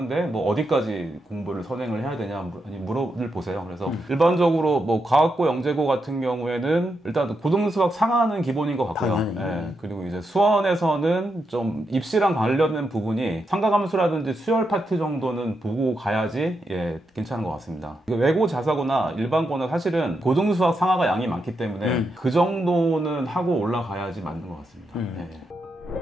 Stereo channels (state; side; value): normal; both; correlation 0.84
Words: 뭐 어디까지 공부를 선행을 해야 되냐 물어를 보세요. 그래서 일반적으로 뭐 과학고 영재고 같은 경우에는 일단 고등수학 상하는 기본인 것 같고요. 예, 그리고 이제 수원에서는 좀 입시랑 관련된 부분이 삼가함수라든지 수열 파트 정도는 보고 가야지 괜찮은 것 같습니다. 외고 자사고나 일반고는 사실은 고등수학 상하가 양이 많기 때문에 그 정도는 하고 올라가야지 맞는 것 같습니다. 예.